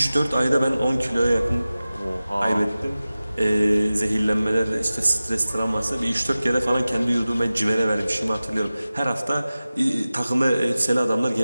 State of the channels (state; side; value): inverted; both; correlation -0.96